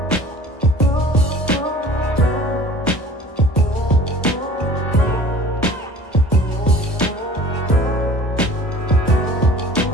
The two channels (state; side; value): normal; both; correlation 0.46